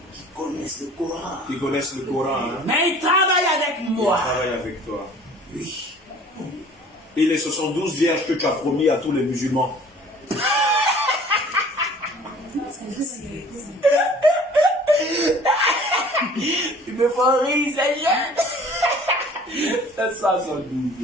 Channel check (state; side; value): normal; both; correlation 0.50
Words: Qui connaissent le Coran. qui connaissent le Coran, hein, Mais ils travaillent avec ils moi. travaillent avec toi. Oui. Et les 72 vierges que tu as promis à tous les musulmans. Tu me fais rire, ces jeunes. C'est ça, 72